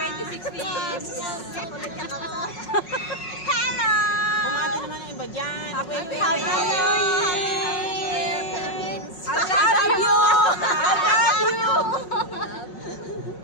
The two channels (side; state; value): right; late; 5.5 ms